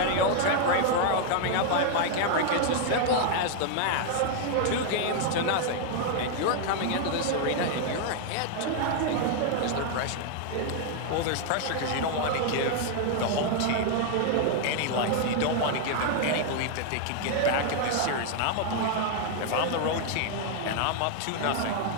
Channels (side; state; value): both; different; correlation 0.00